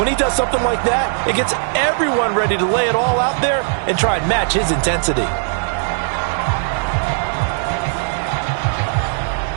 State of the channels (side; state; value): left; silent; digital silence